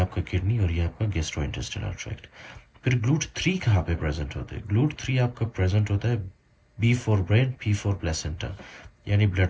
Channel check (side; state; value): both; identical; correlation 1.00